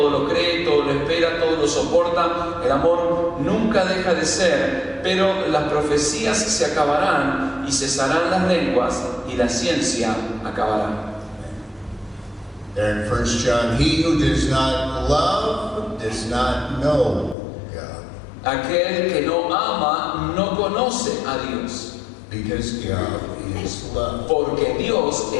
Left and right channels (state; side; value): drops out; right; at 17.4 s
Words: lo cree, todo lo espera, todo lo soporta, el amor nunca deja de ser, pero las profecías se acabarán, y y cesarán las lenguas y la ciencia acabará. There in 1 John, he who does not love does not know God. Aquel que no ama no conoce a Dios, Because God is love. porque Dios